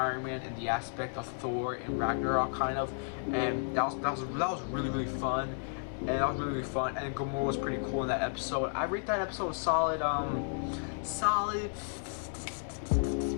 Man in the aspect of Thor and Ragnarok kind of, and that was really fun, and And Gamora was pretty cool in that episode. I rate that episode solid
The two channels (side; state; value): right; silent; digital silence